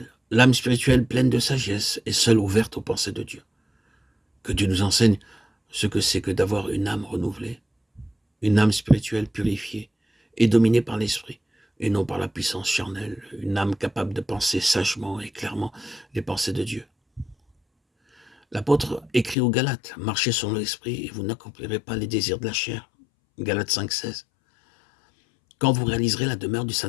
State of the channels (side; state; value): right; drops out; at 19.4 s